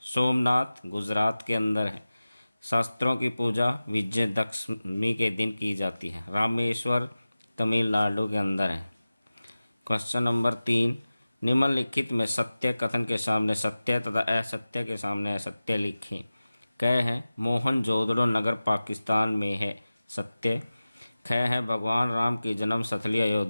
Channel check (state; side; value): inverted; both; correlation -0.96